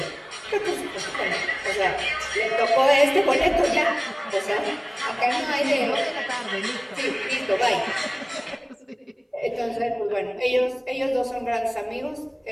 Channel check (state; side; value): identical; both; correlation 1.00